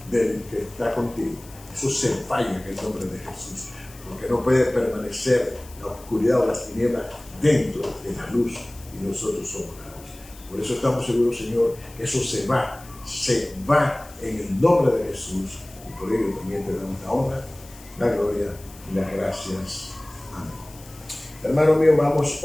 del que está contigo, eso se falla en el nombre de Jesús, porque no puede permanecer la oscuridad o las tinieblas dentro de la luz, y nosotros somos la luz. Por eso estamos seguros, Señor, que eso se va en el nombre de Jesús, y por ello también te damos la honra, la gloria y las gracias. Amén. Hermano mío, vamos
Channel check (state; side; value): noise; left; hiss, 21 dB below the sound